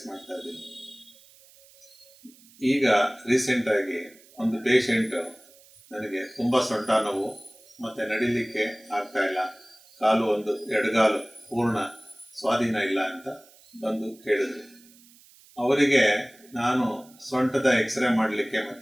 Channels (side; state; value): right; noise; hiss, 26 dB below the sound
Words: ಮಾಡ್ತಾ ಇದ್ದೀನಿ. ಈಗ ರೀಸೆಂಟಾಗಿ ಒಂದು ಪೇಷಂಟು ನನಗೆ ತುಂಬ ಸೊಂಟ ನೋವು ಮತ್ತು ನಡಿಲಿಕ್ಕೆ ಆಗ್ತಾ ಇಲ್ಲ, ಕಾಲು ಒಂದು ಎಡಗಾಲು ಪೂರ್ಣ ಸ್ವಾಧೀನ ಇಲ್ಲ ಅಂತ ಬಂದು ಕೇಳಿದ್ರು. ಅವರಿಗೆ ನಾನು ಸೊಂಟದ ಎಕ್ಸ್ರೇ ಮಾಡಲಿಕ್ಕೆ